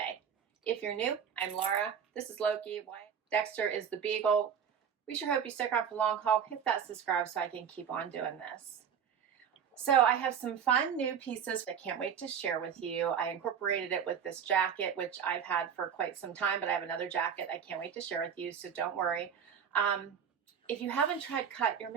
If you're new, I'm Laura. This is Loki. Dexter is the Beagle. We sure hope you stick around for the long haul. Hit that subscribe so I can keep on doing this. So I have some fun new pieces I can't wait to share with you. I incorporated it with this jacket, which I've had for quite some time, but I have another jacket I can't wait to share with you, so don't worry. If you haven't tried Cut, you're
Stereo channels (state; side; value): quieter; left; 7.7 dB